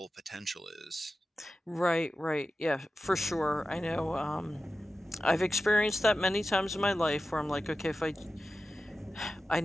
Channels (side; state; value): both; normal; correlation 0.93